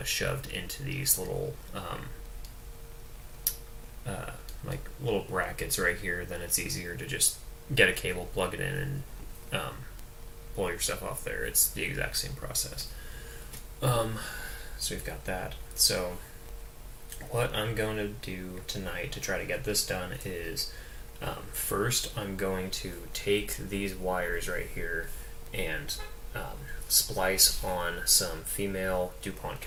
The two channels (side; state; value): both; identical; correlation 1.00